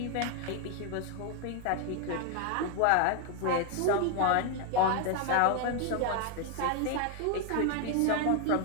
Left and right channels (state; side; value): different; both; correlation 0.01